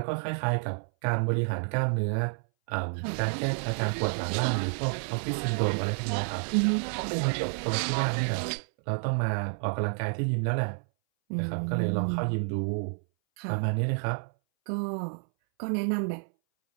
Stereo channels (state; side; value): silent; left; 58 dB below the other